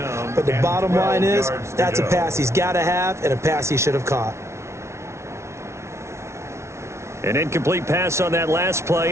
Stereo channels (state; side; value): late; left; 0.13 ms